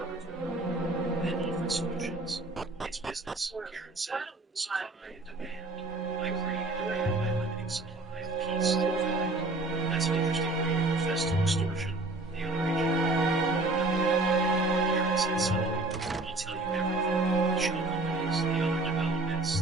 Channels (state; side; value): quieter; left; 3.1 dB